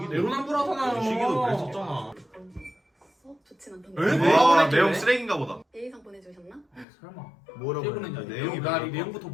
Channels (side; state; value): right; drops out; at 6.9 s